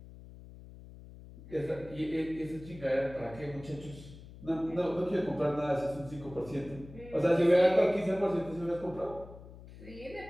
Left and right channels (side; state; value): left; noise; hum, 17 dB below the sound